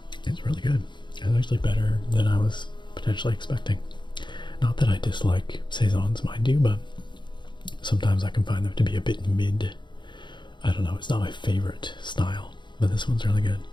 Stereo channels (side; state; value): right; late; 0.22 ms